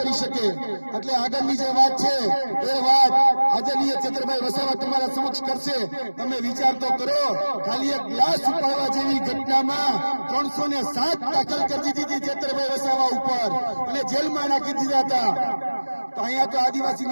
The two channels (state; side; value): inverted; both; correlation -1.00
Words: શકે. એટલે આગળની જે વાત છે એ વાત આદરણીય ચંદ્રભાઈ વસાવા તમારા સમક્ષ કરશે. તમે વિચાર તો કરો, ખાલી એક ગ્લાસ ઉપાડવા જેવી ઘટનામાં 307 દાખલ કરી દીધી ચંદ્રભાઈ વસાવા ઉપર અને જેલમાં નાખી દીધા હતા. તો અહીંયા તો